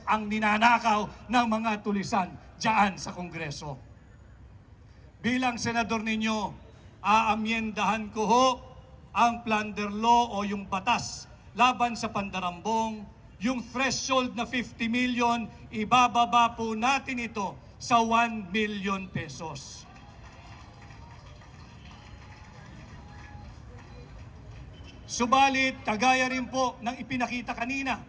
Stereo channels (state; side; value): identical; both; correlation 1.00